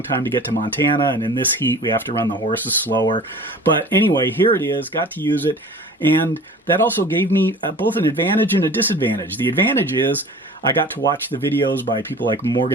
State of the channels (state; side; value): normal; both; correlation 0.42